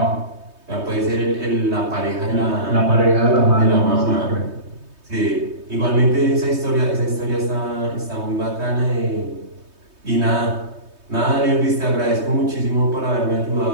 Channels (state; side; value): late; left; 3.2 ms